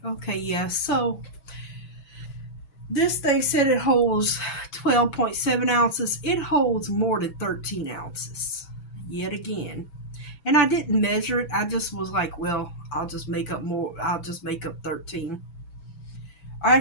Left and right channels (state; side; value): late; right; 5.9 ms